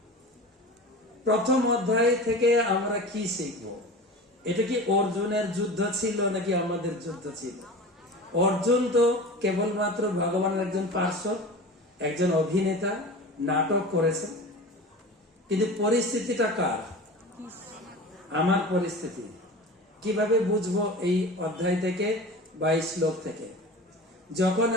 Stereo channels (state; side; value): normal; both; correlation 0.34